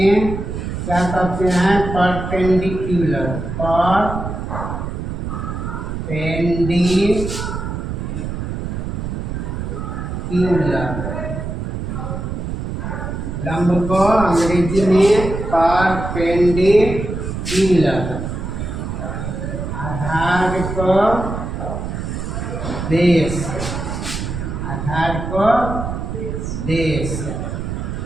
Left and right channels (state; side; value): noise; right; rumble, 5 dB below the sound